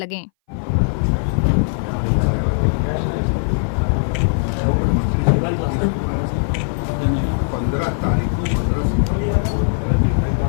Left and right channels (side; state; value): right; silent; 61 dB below the other